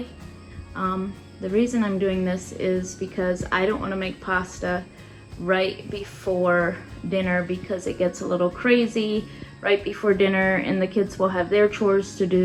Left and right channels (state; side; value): identical; both; correlation 1.00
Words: The reason I'm doing this is because I don't want to make pasta right before dinner because it gets a little crazy right before dinner and the kids will have their chores to